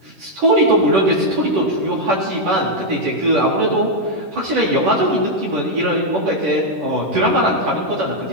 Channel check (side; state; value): left; late; 10 ms